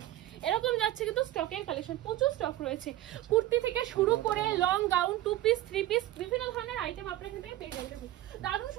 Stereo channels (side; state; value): left; quieter; 14.9 dB